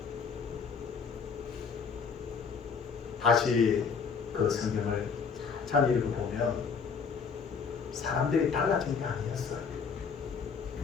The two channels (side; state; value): right; quieter; 5.8 dB